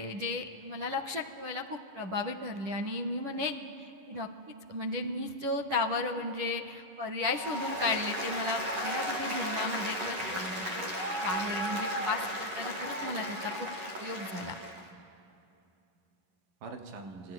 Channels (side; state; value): left; late; 11 ms